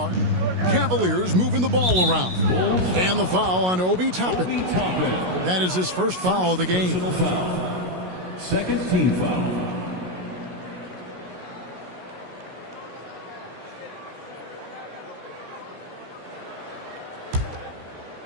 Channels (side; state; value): left; late; 16 ms